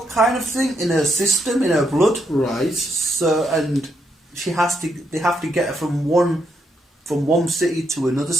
kind of thing in her system, in her blood. Right. So, and they have to get her from one city to another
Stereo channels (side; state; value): both; normal; correlation 0.78